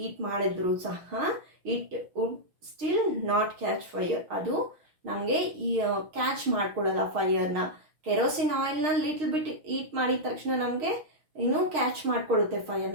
ಮಾಡಿದ್ರು ಸಹ it would still not catch fire, ಅದು ನಮಗೆ ಈ ಕ್ಯಾಚ್ ಮಾಡ್ಕೊಡಲ್ಲ ಫೈರ್ನ. ಕೆರೋಸಿನ್ ಆಯಿಲ್ನ ಲಿಟಲ್ ಬಿಟ್ ಹೀಟ್ ಮಾಡಿದ ತಕ್ಷಣ ನಮಗೆ ಇನ್ನೂ ಕ್ಯಾಚ್ ಮಾಡ್ಕೊಳ್ಳುತ್ತೆ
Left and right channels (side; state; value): left; late; 6.5 ms